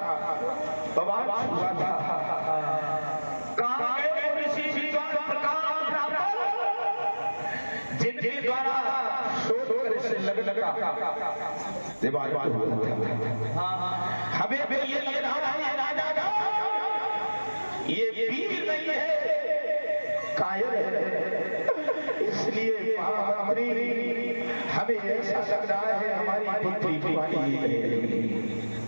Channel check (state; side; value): inverted; both; correlation -1.00